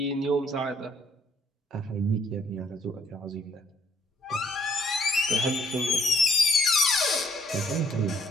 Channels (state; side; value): normal; both; correlation 0.65